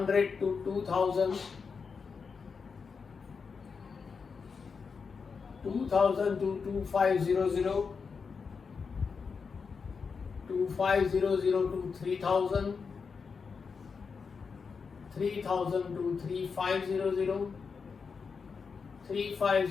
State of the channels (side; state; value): right; quieter; 5.4 dB